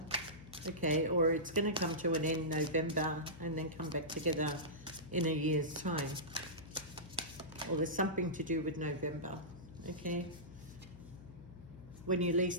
okay, or it's going to come to an end November and then come back together in a year's time. Or there's something to do with November, okay, when you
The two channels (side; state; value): left; noise; hum, 17 dB below the sound